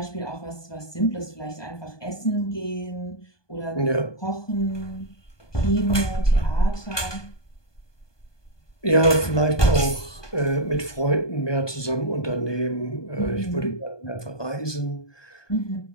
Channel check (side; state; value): right; late; 1.2 ms